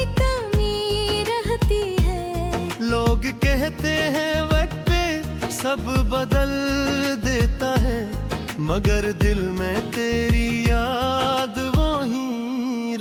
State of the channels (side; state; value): both; identical; correlation 1.00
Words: कमी रहती है। लोग कहते हैं वक्त पे सब बदल देता है, मगर दिल में तेरी याद वो ही